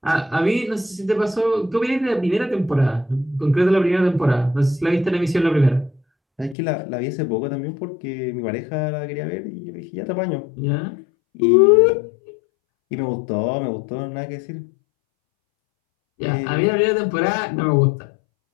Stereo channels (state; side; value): drops out; right; at 6.6 s